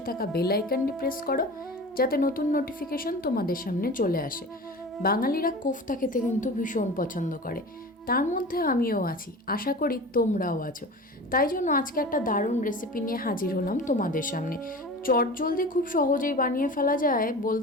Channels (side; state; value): both; normal; correlation 0.35